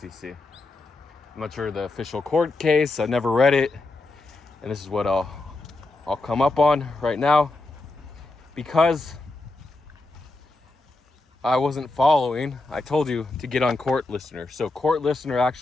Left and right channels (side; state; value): right; quieter; 3.1 dB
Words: I'm not sure the official court case. I never read it. And this is what I'll come up on right now. Because I wasn't following, I told you to get on Court Listener. So Court Listener